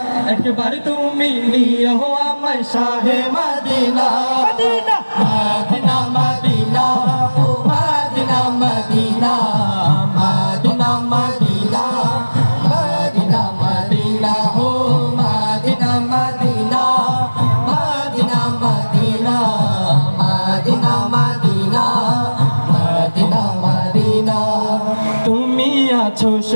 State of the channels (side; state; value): both; inverted; correlation -1.00